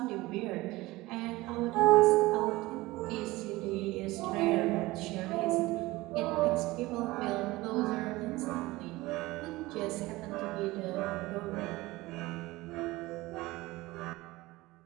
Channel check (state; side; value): quieter; left; 19.8 dB